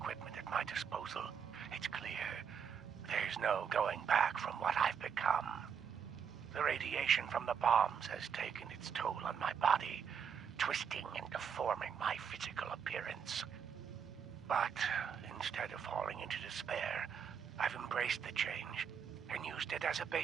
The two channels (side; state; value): left; quieter; 7.2 dB